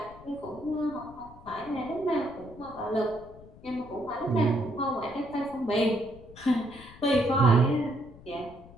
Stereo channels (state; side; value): noise; left; rumble, 20 dB below the sound